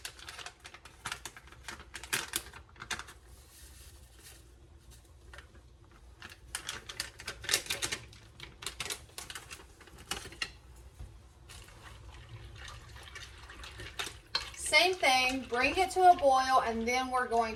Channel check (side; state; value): both; identical; correlation 1.00